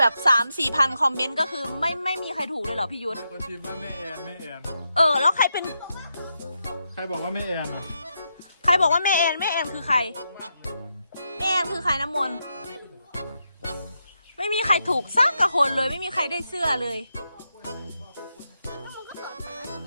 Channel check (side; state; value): both; inverted; correlation -0.84